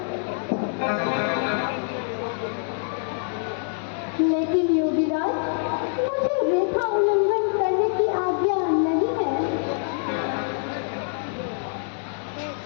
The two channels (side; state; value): right; silent; digital silence